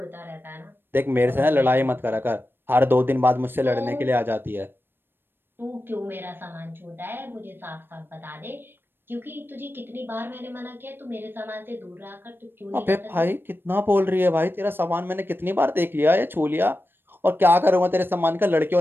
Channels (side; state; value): left; late; 0.10 ms